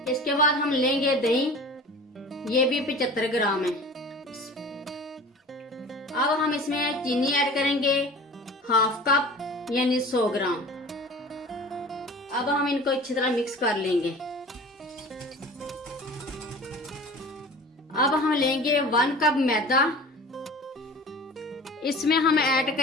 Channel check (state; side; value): normal; both; correlation 0.40